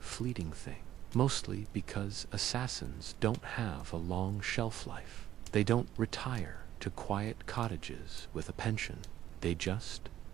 thing, mostly because assassins don't have a long shelf life. They don't retire to quiet cottages with a pension. They just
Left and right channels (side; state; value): left; quieter; 12.4 dB